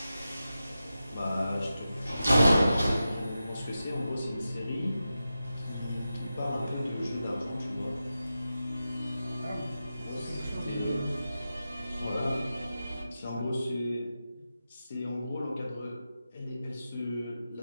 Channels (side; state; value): both; inverted; correlation -0.92